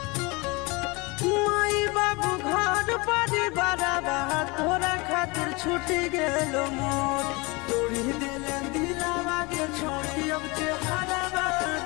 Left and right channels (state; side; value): quieter; right; 26.3 dB